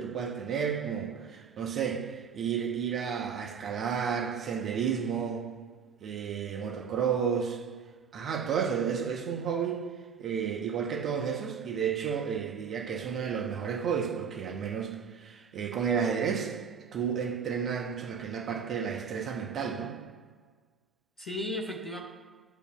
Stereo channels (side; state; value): left; quieter; 6.6 dB